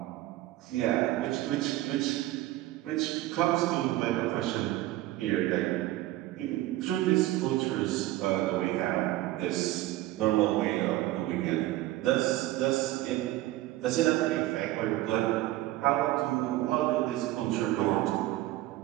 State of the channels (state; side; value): quieter; left; 16.4 dB